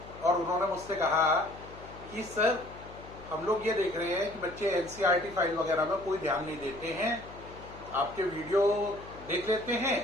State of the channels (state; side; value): noise; left; hum, 17 dB below the sound